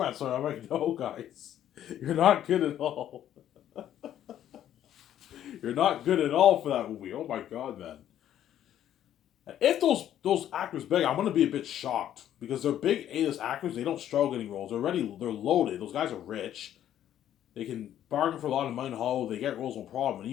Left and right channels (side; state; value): right; quieter; 11.2 dB